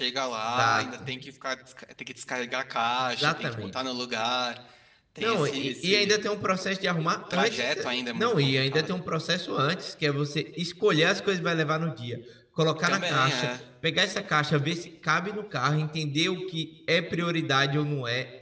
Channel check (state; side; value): identical; both; correlation 1.00